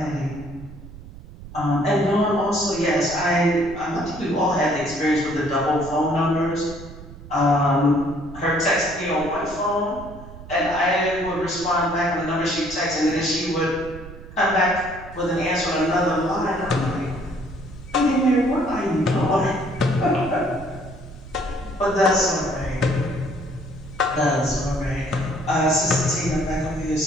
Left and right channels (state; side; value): noise; right; rumble, 15 dB below the sound